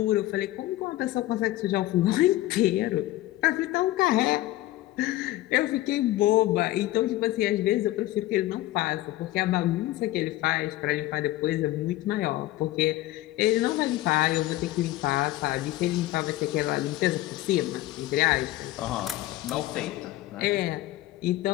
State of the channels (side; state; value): right; quieter; 16.2 dB